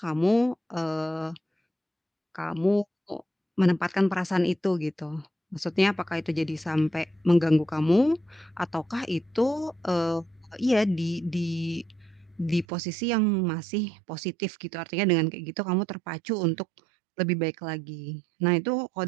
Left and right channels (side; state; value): left; drops out; at 12.7 s